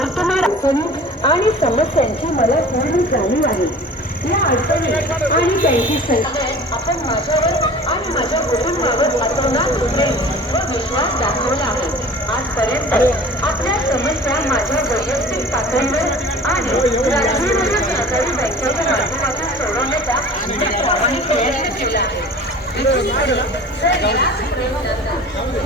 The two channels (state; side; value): normal; both; correlation 0.43